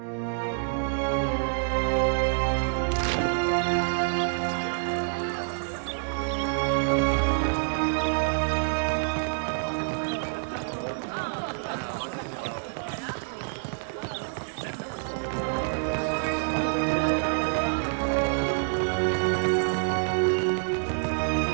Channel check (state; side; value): silent; left; digital silence